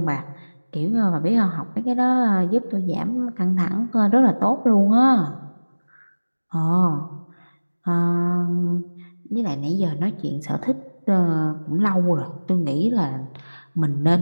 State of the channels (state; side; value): inverted; both; correlation -1.00